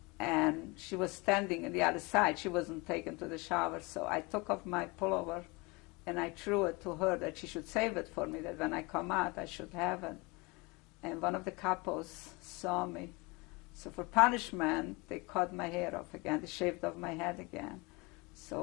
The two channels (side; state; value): right; quieter; 26.4 dB